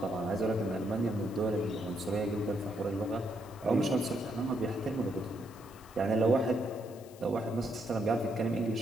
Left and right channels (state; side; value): noise; left; hiss, 23 dB below the sound